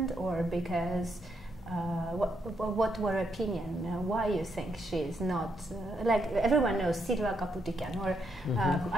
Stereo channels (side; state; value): both; normal; correlation 0.78